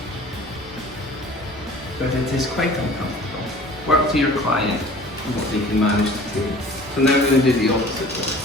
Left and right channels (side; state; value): both; normal; correlation 0.46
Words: But it is quite uncomfortable. Work to your client and what they can manage to do. So now we're going to do the opposite one.